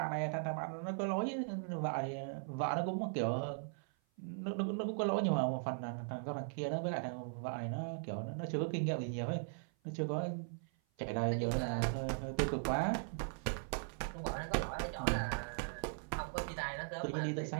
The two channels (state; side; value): silent; left; 52 dB below the other